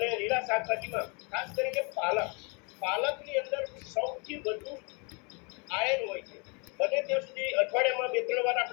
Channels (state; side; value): quieter; right; 32.0 dB